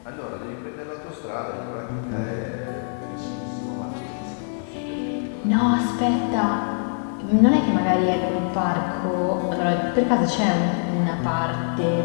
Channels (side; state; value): right; silent; digital silence